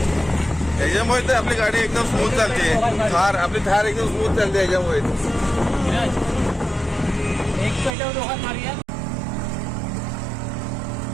त्याच्यामुळे तर आपली गाडी एकदम स्मूथ चालते. आपली थार एकदम स्मूथ चालते याच्यामुळे. एक पेट्यावर दोघात मारूया.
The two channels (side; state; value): left; drops out; at 8.0 s